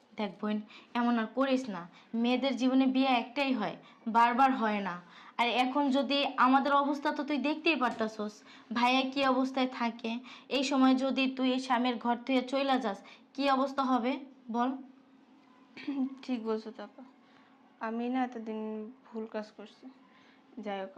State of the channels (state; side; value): identical; both; correlation 1.00